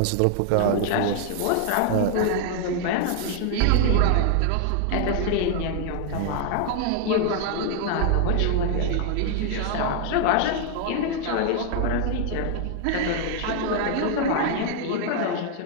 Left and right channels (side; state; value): both; different; correlation 0.00